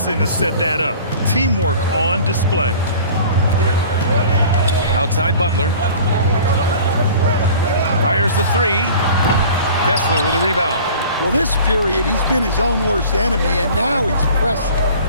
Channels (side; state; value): both; inverted; correlation -0.44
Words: to set that up. Teamwork on display. Outside Butler. Fires the 3. Kessler with a rebound. Well, this period, he's been his own worst enemy, and now he's pressing.